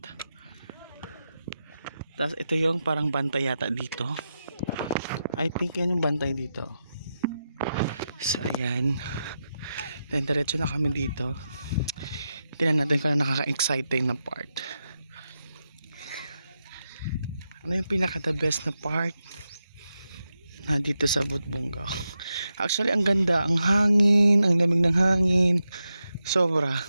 Tapos ito yung parang bantay yata dito. I think yan yung bantay dito. So ayan. Then diretso na kami dito. Tingnan natin kung nakaka-exciting na part. Ano yung pinaka the best na part na dito sa Budbungao? Actually ang ganda, ang hangin, ang lamig ng hangin. Sobra.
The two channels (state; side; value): inverted; both; correlation -0.88